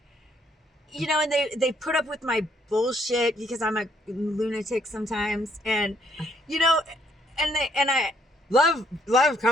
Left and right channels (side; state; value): both; normal; correlation 0.68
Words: and they put up with my bullshit because I'm a lunatic sometimes. And, and I Love